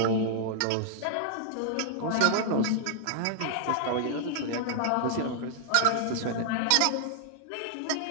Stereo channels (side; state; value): both; different; correlation -0.01